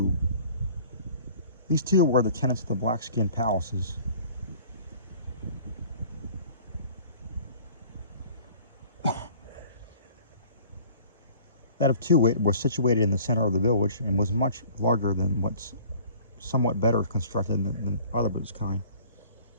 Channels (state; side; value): inverted; both; correlation -0.50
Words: These two were the tenants of the black-skin palaces. That of Too Wit was situated in the center of the village and was much larger than what's somewhat better constructed than other of its kind.